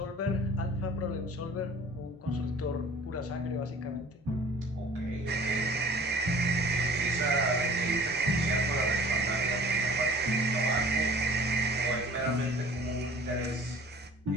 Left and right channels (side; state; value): both; normal; correlation 0.49